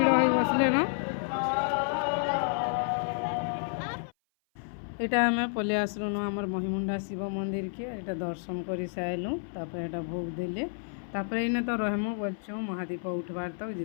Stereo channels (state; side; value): silent; right; 55 dB below the other